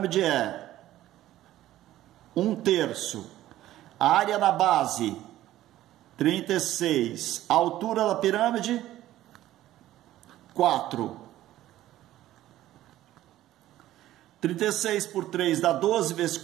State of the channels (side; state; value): left; quieter; 14.2 dB